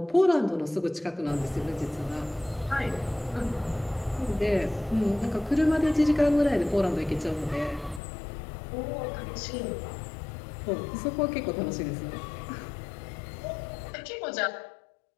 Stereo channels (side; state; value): right; drops out; at 8.0 s